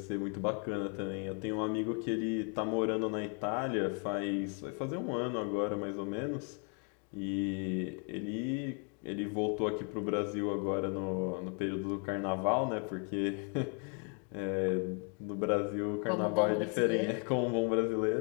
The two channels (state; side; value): quieter; right; 39.6 dB